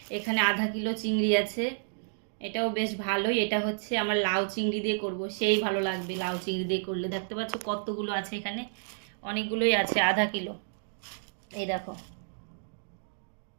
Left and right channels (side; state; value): left; silent; digital silence